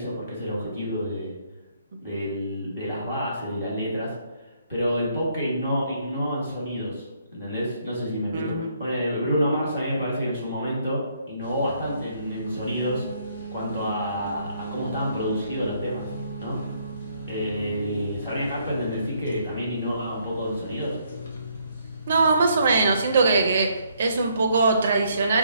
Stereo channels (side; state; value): both; inverted; correlation -0.70